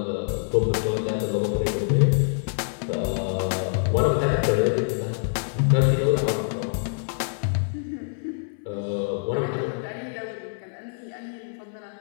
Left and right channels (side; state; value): right; silent; 61 dB below the other